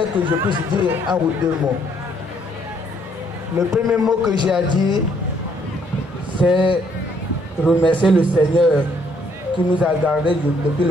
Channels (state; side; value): normal; both; correlation 0.68